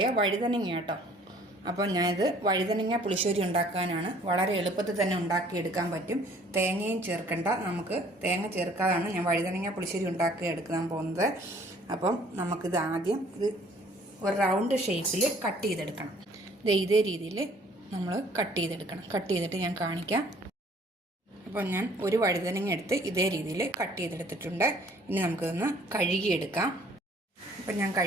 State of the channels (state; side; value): normal; both; correlation 0.57